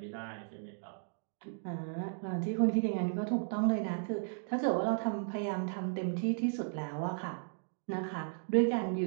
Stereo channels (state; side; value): silent; left; digital silence